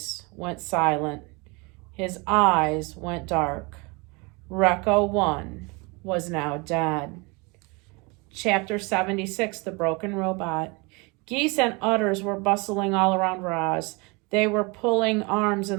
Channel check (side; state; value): left; quieter; 28.2 dB